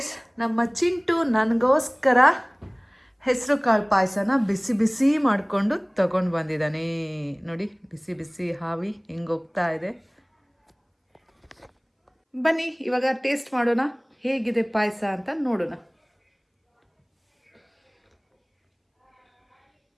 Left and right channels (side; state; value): both; identical; correlation 1.00